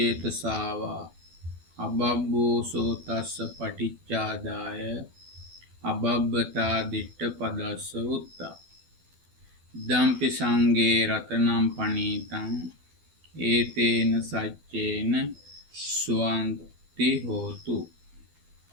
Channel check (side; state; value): left; late; 12 ms